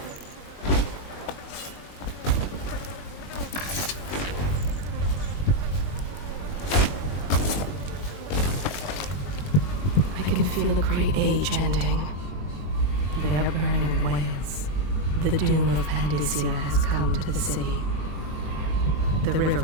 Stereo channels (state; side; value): late; right; 21 ms